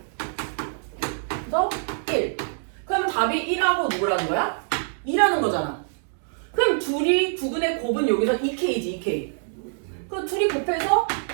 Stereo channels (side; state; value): left; silent; digital silence